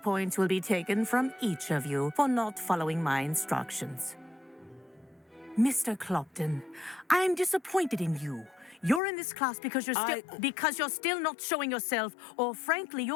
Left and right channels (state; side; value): drops out; right; at 9.0 s